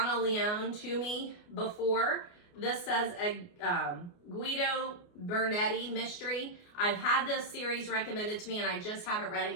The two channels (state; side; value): late; right; 29 ms